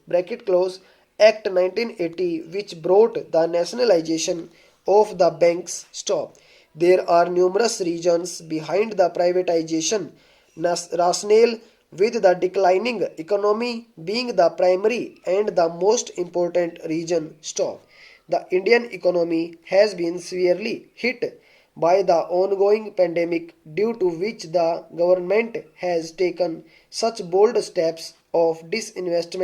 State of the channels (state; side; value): identical; both; correlation 1.00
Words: close Act 1980, which brought the nationalization of the banks. Stop. There are numerous reasons behind the privatization rationale, with the declining economy being the primary and the most important reason. Stop. The Indian economy has been severely hit by the ongoing pandemic, due to which the government has taken such bold steps of